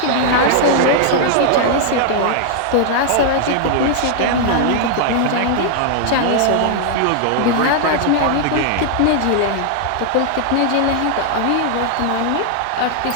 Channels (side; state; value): both; different; correlation 0.00